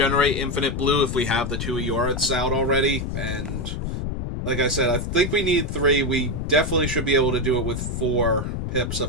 infinite blue if we have the two Eoriths out already, and like I said, I think we need 3. We definitely should be able to do it with 4 pips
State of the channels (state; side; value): noise; left; rumble, 3 dB below the sound